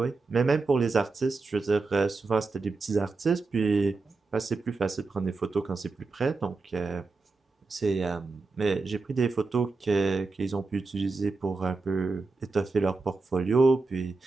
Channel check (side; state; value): left; quieter; 3.9 dB